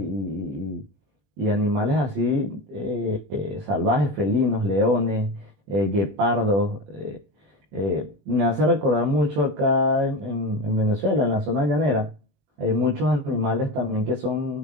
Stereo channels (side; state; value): left; late; 20 ms